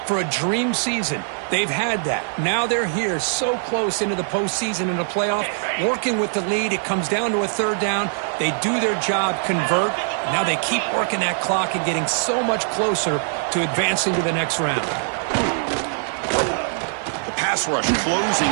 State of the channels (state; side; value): silent; left; digital silence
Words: for a dream season. They've had that. Now they're here so close into the postseason and the playoff, working with the lead. It comes down to a third down. They do their job, convert. Now they keep working that clock and getting so much closer to advancing to the next round. The pass rush closing